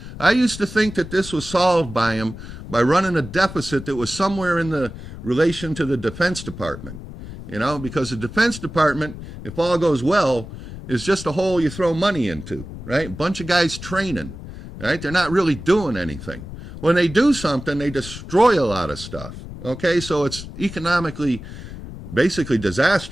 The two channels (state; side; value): noise; left; rumble, 12 dB below the sound